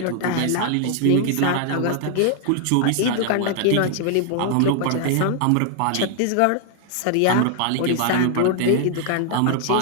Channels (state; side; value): different; both; correlation 0.00